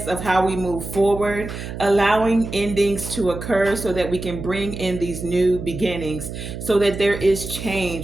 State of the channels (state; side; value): noise; right; hum, 8 dB below the sound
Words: of how we move forward, allowing endings to occur so that we can bring in these new beginnings, so that there is